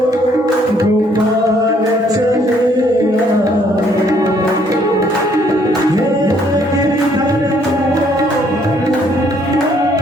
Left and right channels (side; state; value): both; normal; correlation 0.65